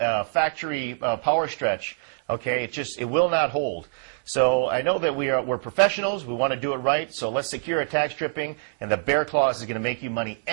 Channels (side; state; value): left; silent; digital silence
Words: factory power stretch. Okay, it will not hold. So I know that we're professionals. We want to do it right. So let's secure a tack stripping, and the Behr Claws is going to make you money